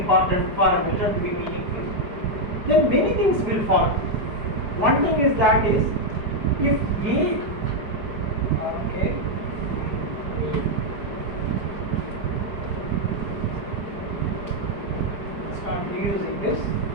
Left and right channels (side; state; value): left; late; 4.8 ms